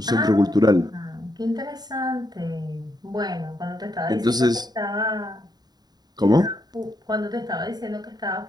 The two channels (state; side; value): late; left; 0.20 ms